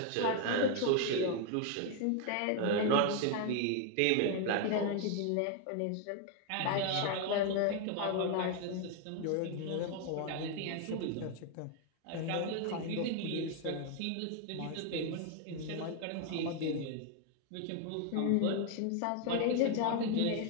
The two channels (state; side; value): different; both; correlation 0.01